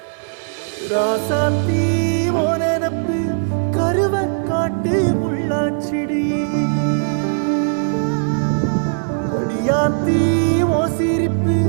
ராசாத்தி ஓ நினப்பு கருவ காட்டு முள்ளாச்சிடி. அடியாத்தி ஓ சிரிப்பு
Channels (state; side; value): silent; left; digital silence